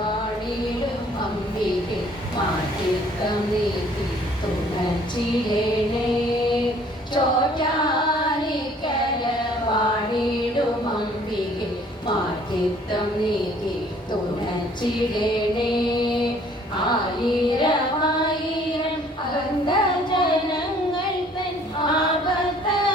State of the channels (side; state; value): both; normal; correlation 0.57